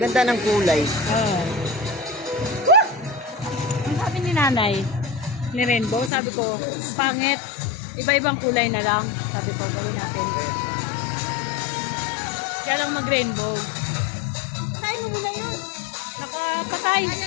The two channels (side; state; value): right; drops out; at 6.1 s